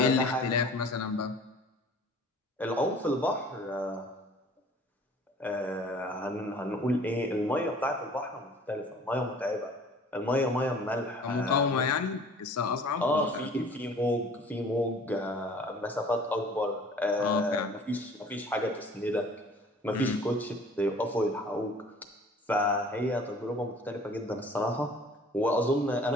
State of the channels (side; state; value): both; normal; correlation 0.50